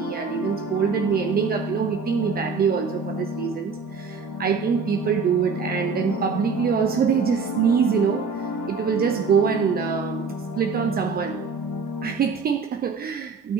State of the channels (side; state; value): left; quieter; 5.0 dB